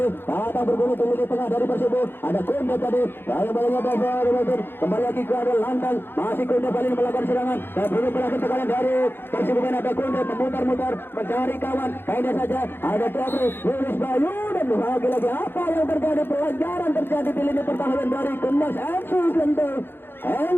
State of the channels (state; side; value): late; right; 0.10 ms